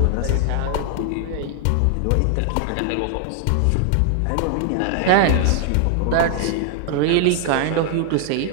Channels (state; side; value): different; both; correlation 0.00